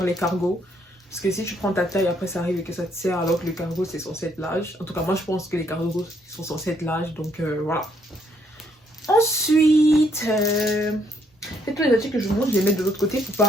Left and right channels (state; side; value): normal; both; correlation 0.71